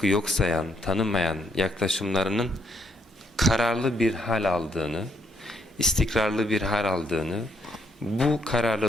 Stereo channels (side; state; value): both; normal; correlation 0.73